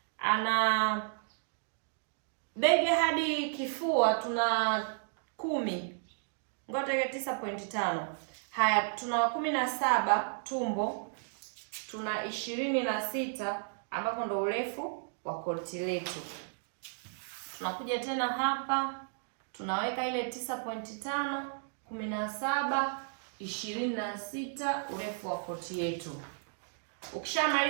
ana bega hadi kifua tuna 10. Ngoja 9.5. Haya, tuna 17 tumbo, tuna 26 ambapo ndo urefu wa koti letu. Tunakuja tena hapa, tunaweka ile 9.5, 17, 26 urefu wa koti yetu.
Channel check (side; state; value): left; silent; digital silence